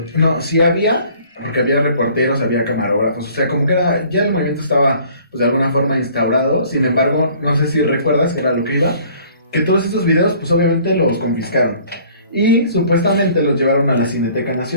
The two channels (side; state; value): both; inverted; correlation -0.54